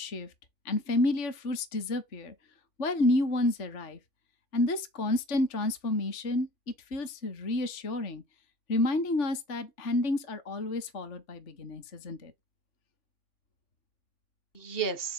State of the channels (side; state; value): right; late; 3.4 ms